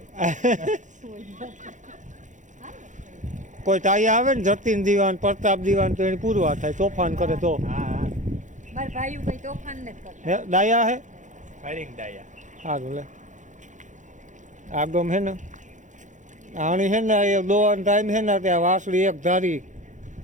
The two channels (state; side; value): late; left; 0.36 ms